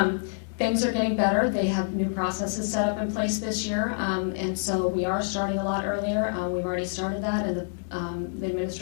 Things are getting better. They have new processes set up in place this year, and so we are starting a lot earlier. We've already started that, and the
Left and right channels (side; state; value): right; silent; digital silence